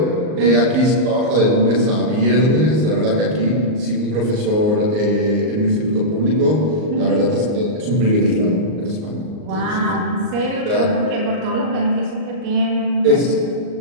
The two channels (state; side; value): late; left; 38 ms